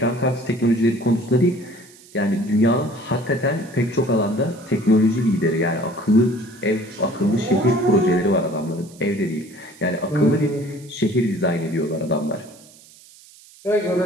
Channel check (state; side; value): noise; right; hiss, 24 dB below the sound